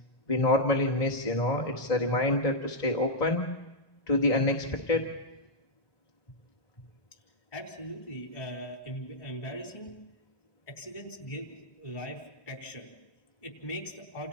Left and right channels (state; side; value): late; right; 1.2 ms